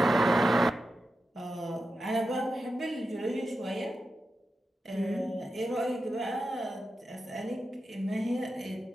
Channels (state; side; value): normal; both; correlation 0.90